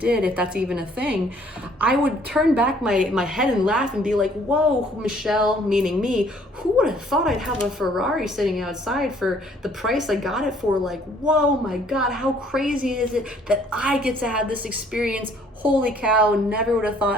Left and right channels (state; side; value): normal; both; correlation 0.60